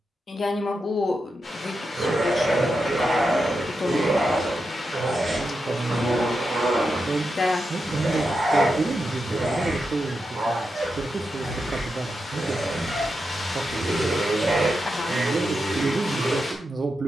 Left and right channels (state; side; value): normal; both; correlation 0.87